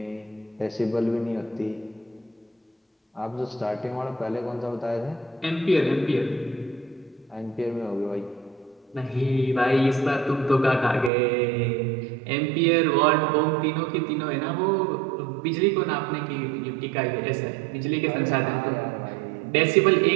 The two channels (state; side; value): drops out; left; at 11.1 s